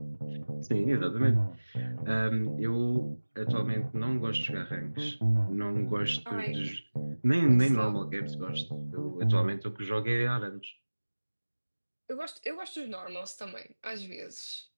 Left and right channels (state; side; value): inverted; both; correlation -1.00